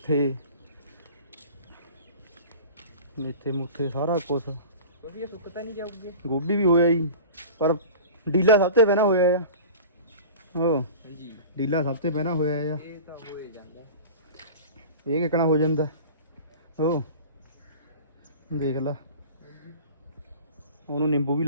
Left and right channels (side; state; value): both; inverted; correlation -0.38